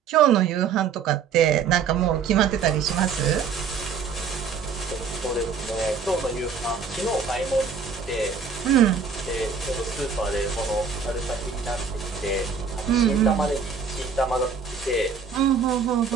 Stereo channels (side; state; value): left; quieter; 6.0 dB